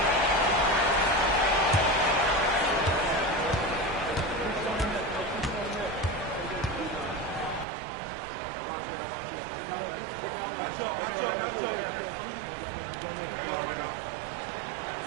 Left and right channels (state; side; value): drops out; left; at 7.7 s